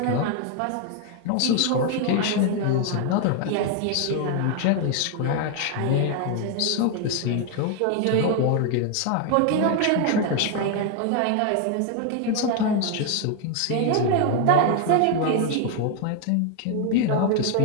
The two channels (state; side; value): different; both; correlation 0.01